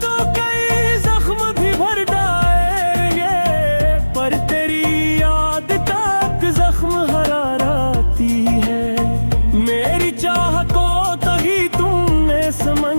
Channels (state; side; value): inverted; both; correlation -1.00